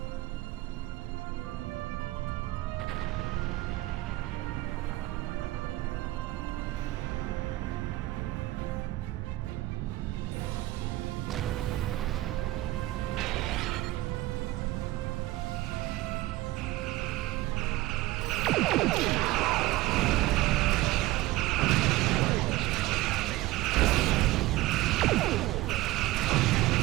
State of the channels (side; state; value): left; quieter; 17.8 dB